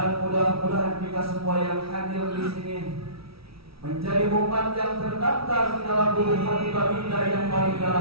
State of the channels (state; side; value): late; left; 0.76 ms